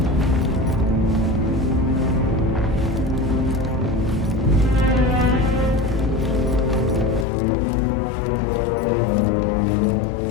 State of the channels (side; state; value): right; drops out; at 7.2 s